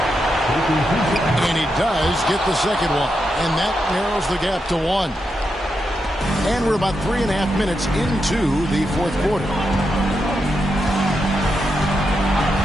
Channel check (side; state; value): both; normal; correlation 0.85